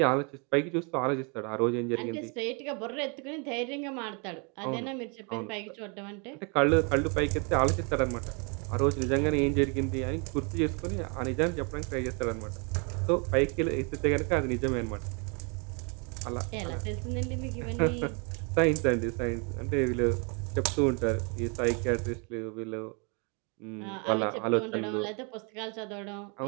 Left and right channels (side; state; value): left; quieter; 34.8 dB